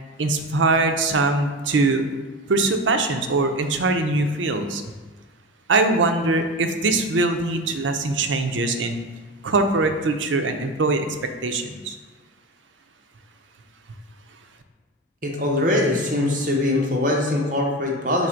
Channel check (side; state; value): both; normal; correlation 0.23